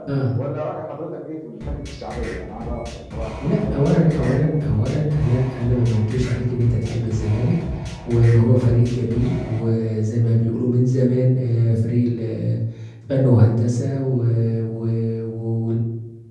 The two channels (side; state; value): both; identical; correlation 1.00